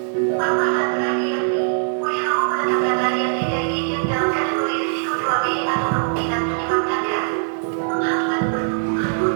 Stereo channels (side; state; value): left; silent; digital silence